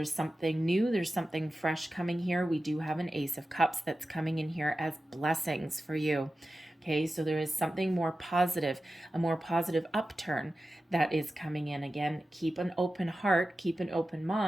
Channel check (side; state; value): both; normal; correlation 0.94